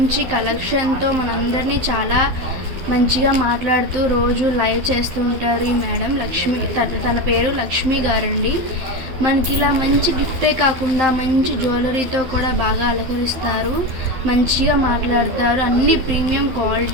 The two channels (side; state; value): left; late; 12 ms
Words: కలెక్షన్తో మనందరినీ చాలా మంచిగా మాట్లాడుతూ రోజు లైవ్ చేస్తూ ఉంటారు ఈ మేడం లక్ష్మి. తన పేరు లక్ష్మి గారండి. మనకి ఇలా మంచి గిఫ్టే కాకుండా మంచి జ్యువెలరీతో కూడా బాగా అలంకరిస్తారు, మంచిగా మాట్లాడతారు. అన్ని ప్రీమియం